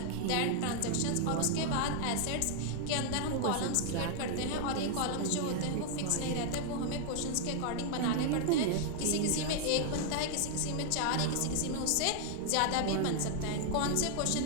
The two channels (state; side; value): different; both; correlation 0.00